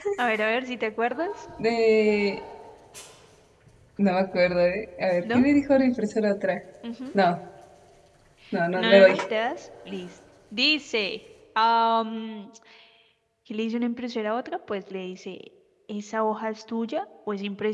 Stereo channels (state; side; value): identical; both; correlation 1.00